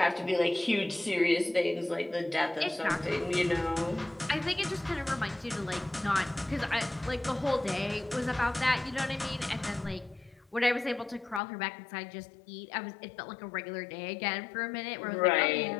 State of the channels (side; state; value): right; drops out; at 11.4 s